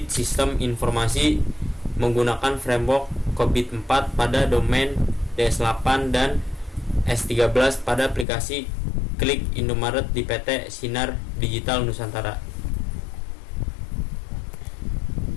sistem informasi menggunakan framework COBIT 4 pada domain DS8 dan S13 pada aplikasi Klik Indomaret di PT Sinar Digital Nusantara.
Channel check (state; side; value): drops out; right; at 8.2 s